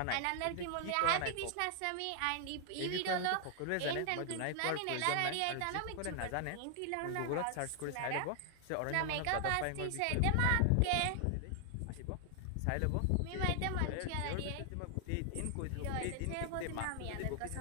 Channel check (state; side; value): different; both; correlation 0.00